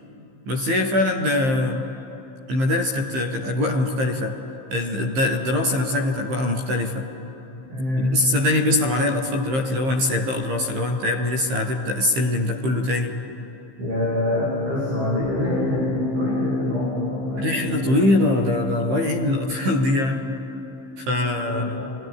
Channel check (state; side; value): late; left; 15 ms